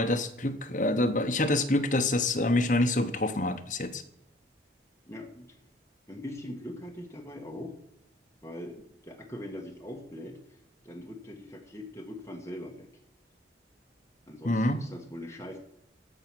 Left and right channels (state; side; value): normal; both; correlation 0.55